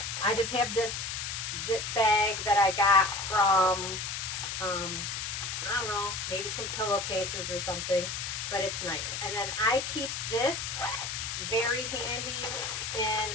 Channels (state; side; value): noise; left; hiss, 4 dB below the sound